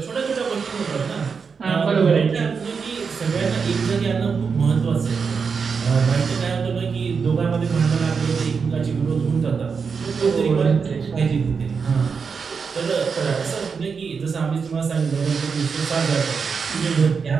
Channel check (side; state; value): left; quieter; 5.6 dB